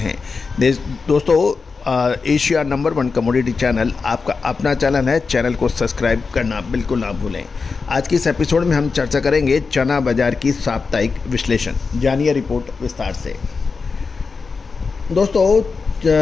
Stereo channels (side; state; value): right; quieter; 4.7 dB